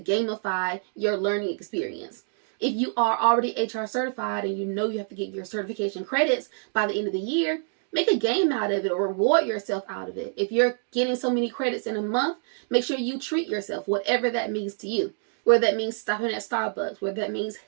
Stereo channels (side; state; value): left; silent; 59 dB below the other